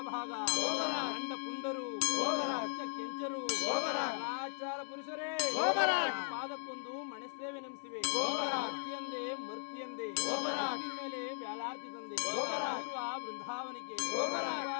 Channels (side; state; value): right; silent; 53 dB below the other